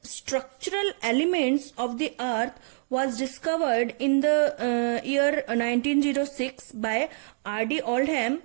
structural elements of the earth was discovered in the year 1906 by R.D. Oldham?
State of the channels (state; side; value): silent; left; digital silence